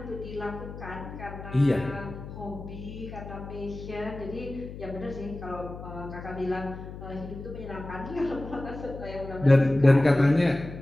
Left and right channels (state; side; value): noise; left; hum, 11 dB below the sound